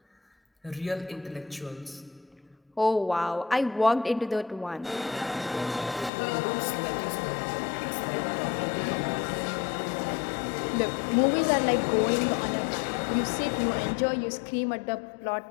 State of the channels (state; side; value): drops out; right; at 6.1 s